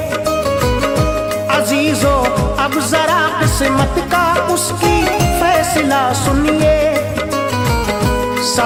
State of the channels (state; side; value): identical; both; correlation 1.00